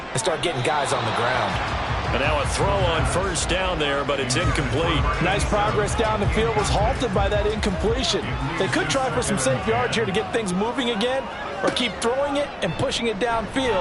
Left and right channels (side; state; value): both; identical; correlation 1.00